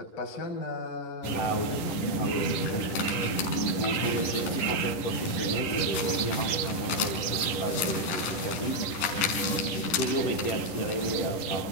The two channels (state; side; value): late; right; 10 ms